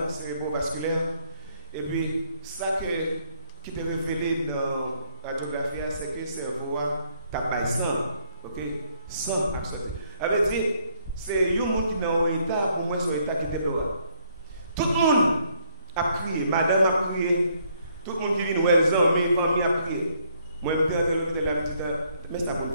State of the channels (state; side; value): inverted; both; correlation -0.69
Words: cérébrovasculaire. Et puis, ça qui te révélé dans la radiographie, c'est que le cerveau a sang. Ok? Sang absolu. Ça veut dire, c'est un monde qui est dans un état, ou moins sur un état qui est dehors. Tout le monde a crié, madame a crié, tout le monde qui vient nous les amis, famille a crié. Moi, je vais la petite, mais ça va